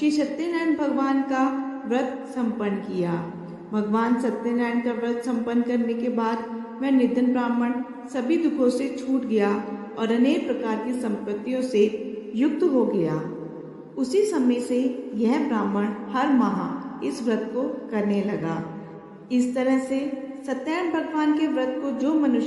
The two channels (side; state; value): both; identical; correlation 1.00